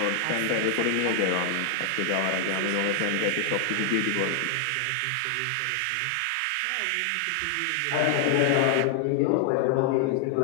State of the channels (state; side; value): different; both; correlation 0.00